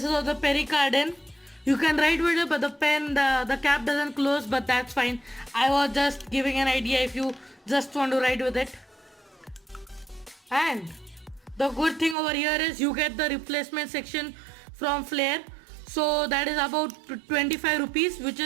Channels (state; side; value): drops out; left; at 12.2 s